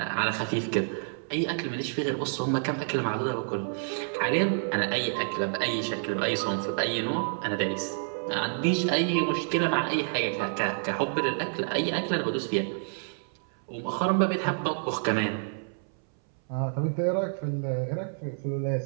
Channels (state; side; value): silent; left; 59 dB below the other